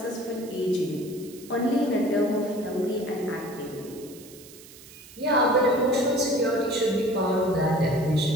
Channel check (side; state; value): right; noise; hiss, 20 dB below the sound